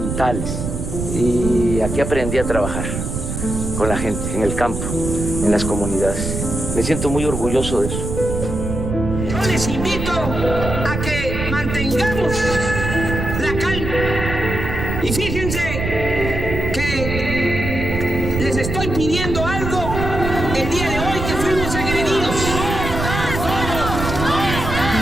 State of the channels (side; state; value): right; noise; rumble, 4 dB below the sound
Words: Y aquí aprendí a trabajar con la gente, en el campo, en las comunidades. Me siento muy orgulloso de eso. Yo les invito a que mantengamos la calma. Y fíjense que les estoy pidiendo algo el día de hoy que fuimos agredidos.